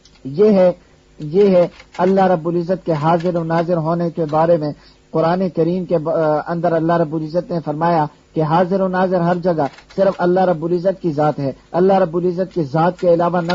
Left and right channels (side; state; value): both; identical; correlation 1.00